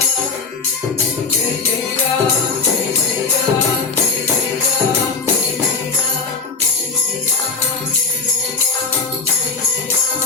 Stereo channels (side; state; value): right; quieter; 4.4 dB